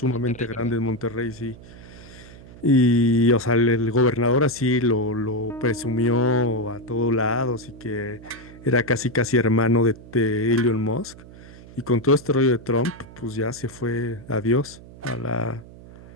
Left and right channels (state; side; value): noise; right; hum, 19 dB below the sound